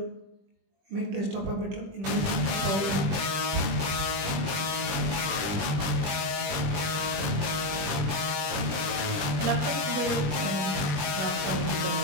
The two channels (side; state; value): left; late; 20 ms